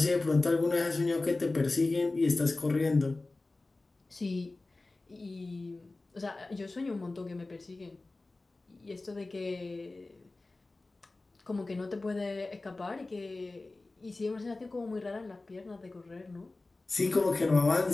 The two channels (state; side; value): quieter; right; 3.2 dB